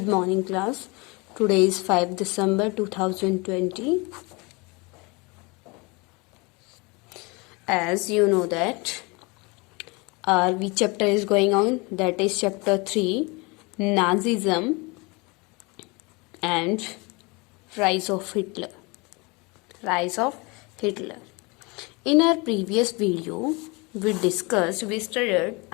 morning class. Today is 5 December 2020. As you know that our chapter is going on, that is chapter 3, Nazism and Rise of Hitler. Rise of Hitler. In our previous video, we studied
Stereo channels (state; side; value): quieter; right; 27.2 dB